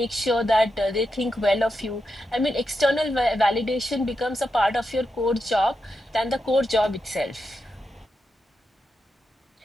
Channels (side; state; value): both; normal; correlation 0.87